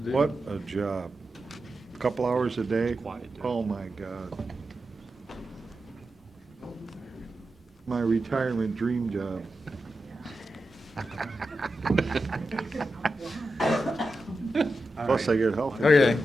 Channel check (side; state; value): both; normal; correlation 0.90